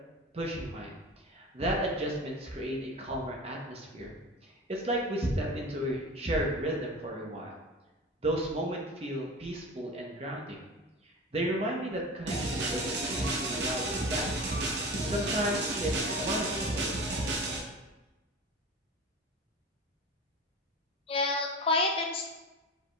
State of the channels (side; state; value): both; normal; correlation 0.32